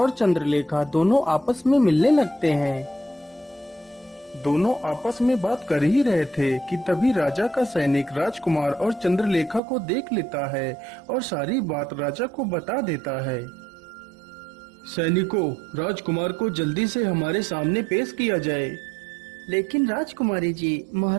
चंद्रलेखा दोनों आपस में मिलने लगते हैं। दोनों आपस में बात कर ही रहे थे कि तभी राजा का सैनिक राजकुमार और चंद्रलेखा को देख लेता है और सारी बात राजा को बता देता है। सैनिकों, राजकुमार को जल्दी से हमारे सामने पेश किया जाए। लेकिन राजकुमारी जी,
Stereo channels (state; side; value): drops out; left; at 9.6 s